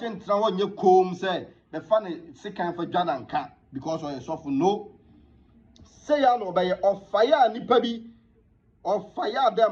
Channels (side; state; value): both; identical; correlation 1.00